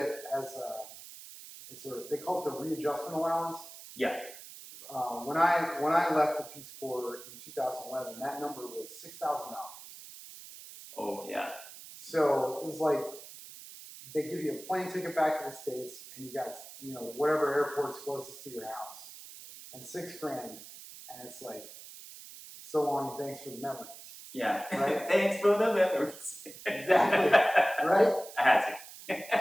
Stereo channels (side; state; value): right; noise; hiss, 15 dB below the sound